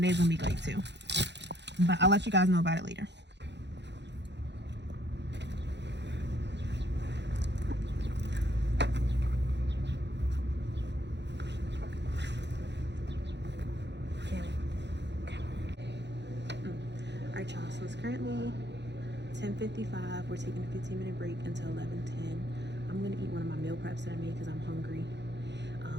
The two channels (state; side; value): late; left; 0.51 ms